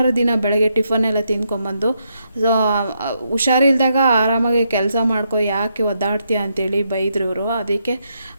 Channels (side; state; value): both; inverted; correlation -0.79